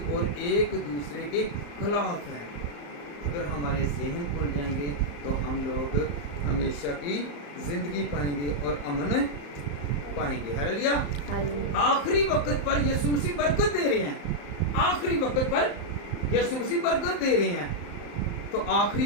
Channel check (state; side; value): late; right; 35 ms